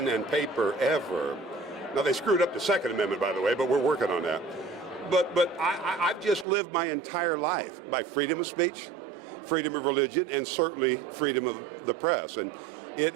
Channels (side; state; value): left; drops out; at 6.5 s